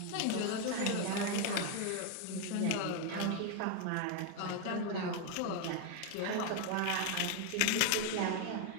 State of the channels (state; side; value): different; both; correlation 0.01